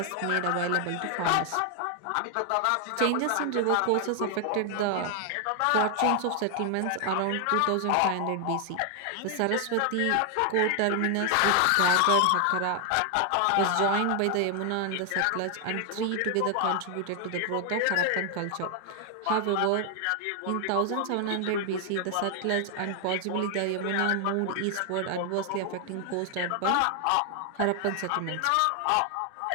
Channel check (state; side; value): different; both; correlation 0.00